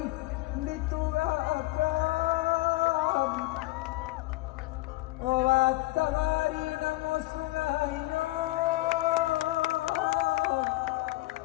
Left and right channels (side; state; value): right; quieter; 19.6 dB